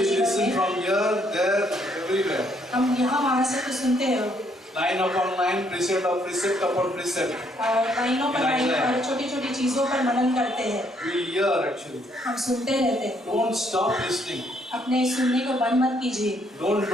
जीवन listen में। from here, there, everywhere. हम यहाँ वहाँ से तो सुनते हैं, Line upon line, precept of precept upon precept. लाइनों पर लाइन और छोटी छोटी चीजों पर मनन करते हैं। We hear actually. हम सुनते रहते हैं। Don't stop listening. अपने सुनने को बंद मत कीजिए,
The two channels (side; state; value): both; normal; correlation 0.69